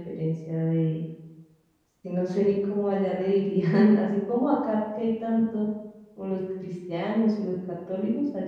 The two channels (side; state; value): both; identical; correlation 1.00